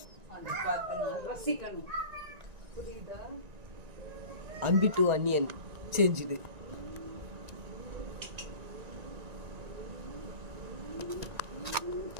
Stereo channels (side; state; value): left; late; 1.9 ms